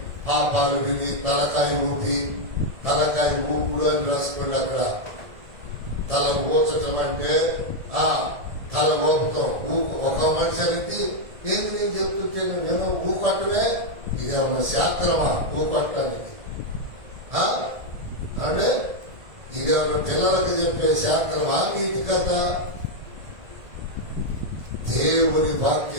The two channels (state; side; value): late; left; 1.7 ms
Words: పాపాలు విని తలకాయ ఊపుడు అని రాసుకోండి. అక్కడ తల ఊచటం అంటే తల ఊపుతాం. ఒక మనిషికి ఏంది నేను చెప్తుంటే నేను ఊకొట్టమే, ఇదేమన్నా శాస్త్రమా ఊకొట్టడానికి? అంటే ఇదేమన్నా పిల్లలకు చెప్పే శాస్త్రమా, నీతి కథ? దేవుని